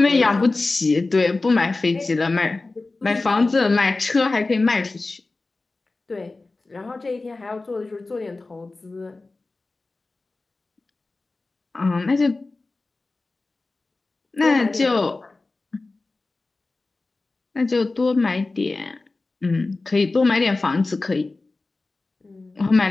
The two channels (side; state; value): right; quieter; 3.4 dB